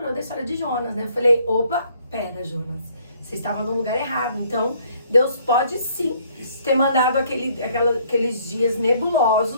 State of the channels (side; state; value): both; inverted; correlation -0.63